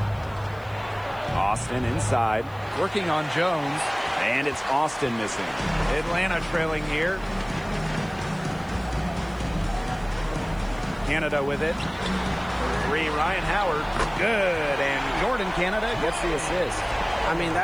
Austin inside, working on Jones. And it's Austin missing. Atlanta trailing here. Canada with it. Three, Ryan Howard. Good. And Jordan Canada gets the assist. I mean,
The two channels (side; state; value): right; noise; hiss, 28 dB below the sound